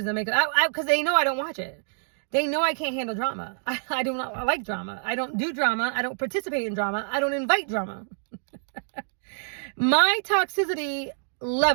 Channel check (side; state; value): left; silent; digital silence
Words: the makeup. Because they know I don't watch it. They know I can't handle drama. I do not like drama. I don't do drama. I don't participate in drama. I don't invite drama. My toxicity